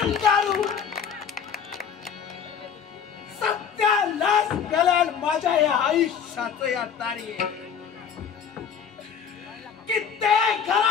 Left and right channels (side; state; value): right; quieter; 7.3 dB